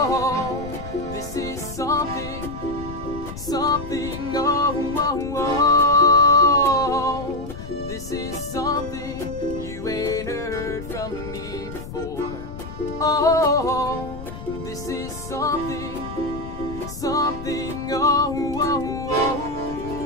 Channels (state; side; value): noise; left; rumble, 11 dB below the sound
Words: this is something, this is something you ain't heard from me before. Oh, this is something,